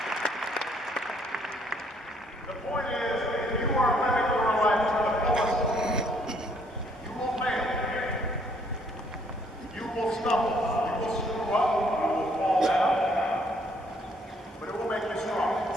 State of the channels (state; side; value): normal; both; correlation 0.66